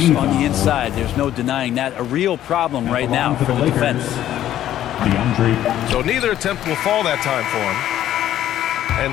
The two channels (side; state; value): right; quieter; 12.1 dB